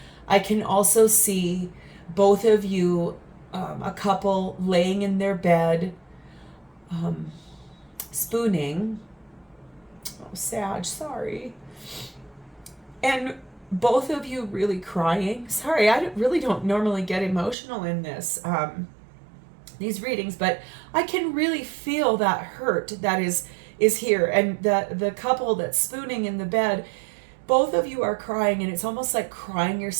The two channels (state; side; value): drops out; left; at 17.6 s